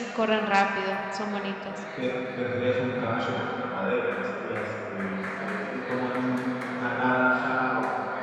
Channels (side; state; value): both; identical; correlation 1.00